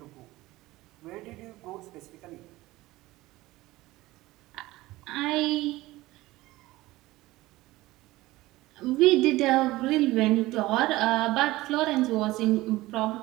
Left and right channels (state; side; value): quieter; left; 18.5 dB